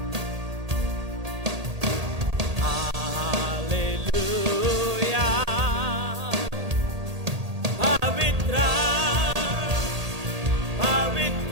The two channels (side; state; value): left; late; 1.8 ms